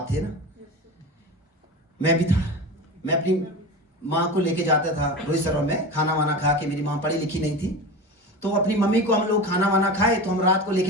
थे ना? मैं भी था। मैं अपनी माँ को लेके जाता था रोहित सरोवर में खाना वाना खा के। मेरी माँ पढ़ी लिखी नहीं थी, तो अपनी मम्मी को हम लोग खाना वाना खाए तो हम रात को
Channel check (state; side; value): normal; both; correlation 0.28